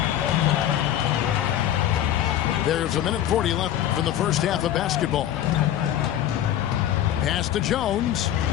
There's 1:40 left from the first half of basketball. Pass to Jones.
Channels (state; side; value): quieter; right; 11.5 dB